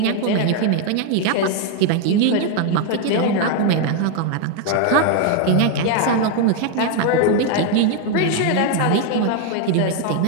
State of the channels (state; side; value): different; both; correlation 0.01